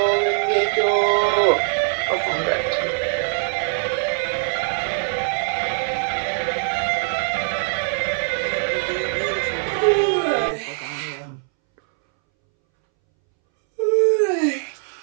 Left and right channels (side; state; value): left; silent; 63 dB below the other